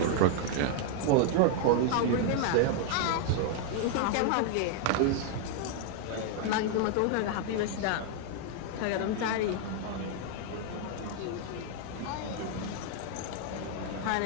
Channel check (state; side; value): different; both; correlation 0.00